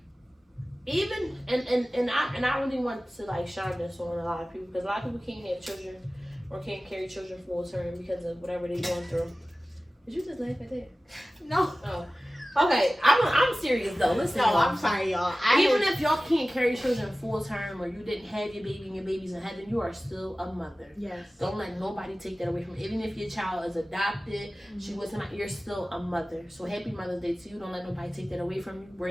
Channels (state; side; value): normal; both; correlation 0.97